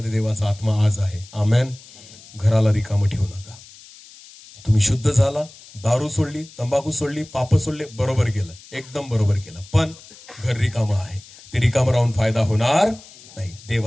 देवाचा आत्मा आज आहे. आमेन. घराला रिकामं ठेवू नका. तुम्ही शुद्ध झाला, दारू सोडली, तंबाखू सोडली, पाप सोडले, बरोबर केलं, एकदम बरोबर केलं. पण घर रिकामं आहे. ते रिकामं राहून फायदा होणार नाही.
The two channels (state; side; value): noise; left; hiss, 21 dB below the sound